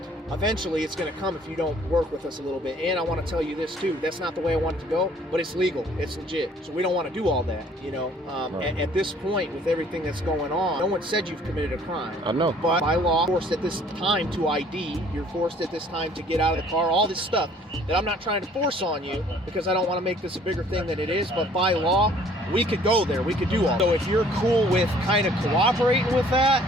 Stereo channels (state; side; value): normal; both; correlation 0.57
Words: eventually it's going to come if you don't work with us a little bit. And I want to tell you this too. That's not the way I want it to go, but it's legal. It's legit. So we don't want to do all that, you know. At this point, with everything that's going on, no one said you've committed a crime. I know. But by law, you're forced at this time to ID. You're forced at this time to get out of the car. All this stuff that I'm not trying to force on you because I don't want to make this a bigger thing than it is. But by law, we could go there. We could do all. So if you're cool with kind of cooperating with